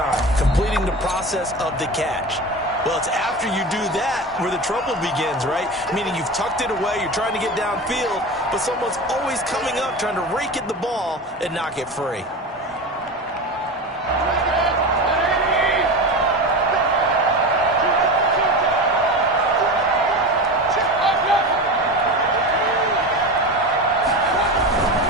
completing the process of the catch. Well, it's after you do that where the trouble begins, right? Meaning you've tucked it away, you're trying to get downfield, but someone's always coming up trying to rake at the ball and knock it free.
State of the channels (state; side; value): normal; both; correlation 0.26